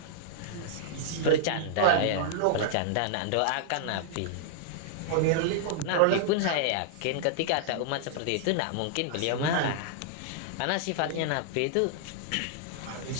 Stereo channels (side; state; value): both; different; correlation -0.01